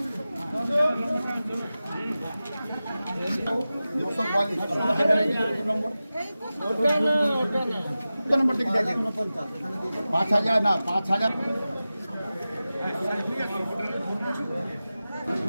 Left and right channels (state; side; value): inverted; both; correlation -0.95